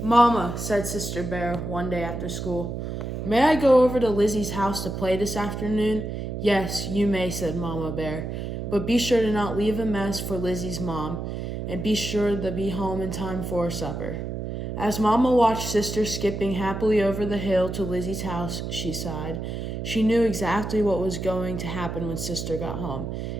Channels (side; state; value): right; noise; hum, 5 dB below the sound